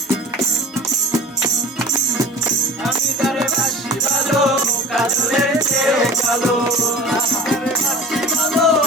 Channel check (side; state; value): both; normal; correlation 0.39